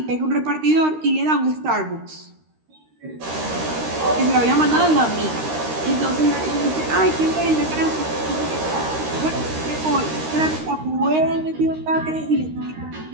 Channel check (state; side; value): late; left; 13 ms